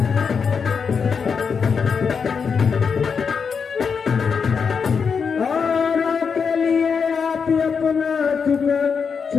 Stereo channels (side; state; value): right; quieter; 6.0 dB